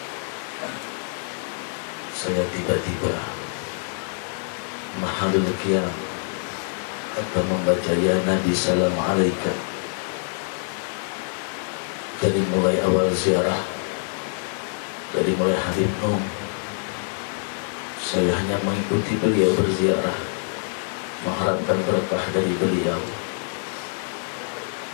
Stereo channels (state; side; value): silent; right; 62 dB below the other